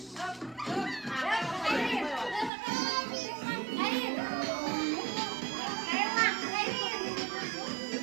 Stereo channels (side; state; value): left; drops out; at 2.5 s